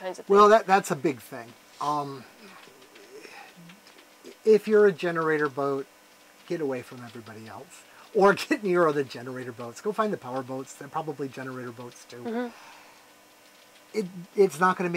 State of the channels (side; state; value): both; identical; correlation 1.00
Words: of things. Well, that's a big thing. If you're a generator boat, get away from everybody else. Or get near other generator boats. Go find the power boats. They're probably generator boats too. It's not going to